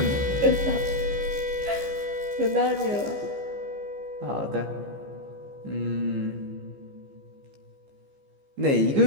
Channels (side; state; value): left; late; 15 ms